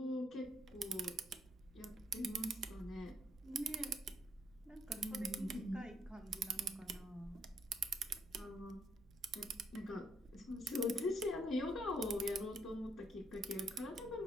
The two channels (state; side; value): noise; right; rumble, 25 dB below the sound